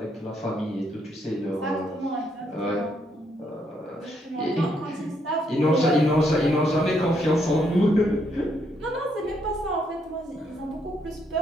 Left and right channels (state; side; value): normal; both; correlation 0.74